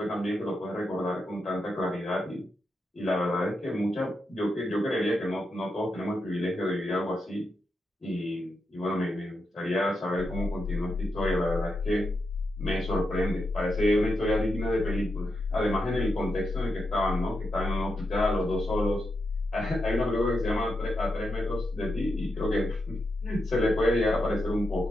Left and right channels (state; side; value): normal; both; correlation 0.85